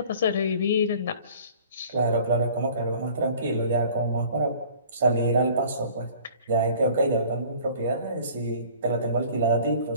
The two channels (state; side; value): inverted; both; correlation -0.49